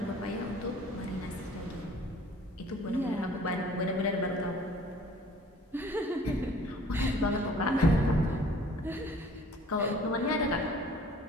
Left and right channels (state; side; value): normal; both; correlation 0.52